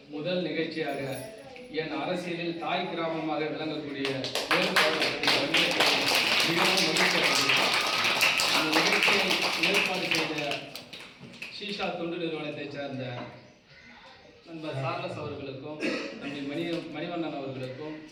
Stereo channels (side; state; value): both; identical; correlation 1.00